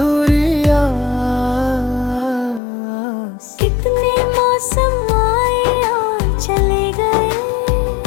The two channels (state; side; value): drops out; right; at 2.6 s